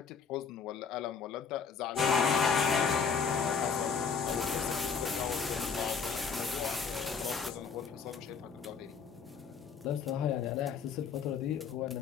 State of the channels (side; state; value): right; quieter; 6.1 dB